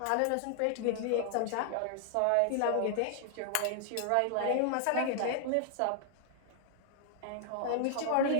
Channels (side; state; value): both; different; correlation 0.00